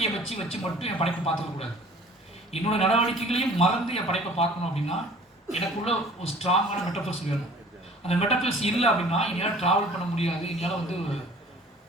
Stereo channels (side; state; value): both; normal; correlation 0.49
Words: வச்சு மட்டும் என் படைப்பை பார்த்துக்கக்கூடாது. என்னோட நடவடிக்கைகளையும் மறந்து என் படைப்பை பார்க்கணும் அப்படின்னா எனக்குள்ள ஒரு ஸ்ட்ராங்கான மெட்டஃபர்ஸ் வேணும். அந்த மெட்டஃபர்ஸ் இல்லை அப்படின்னா என்னால் ட்ராவல் பண்ண முடியாது. என்னால் வந்து